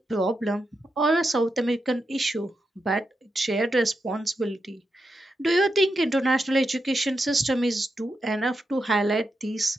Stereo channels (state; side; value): normal; both; correlation 0.86